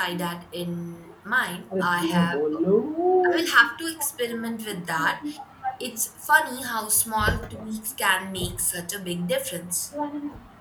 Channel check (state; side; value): identical; both; correlation 1.00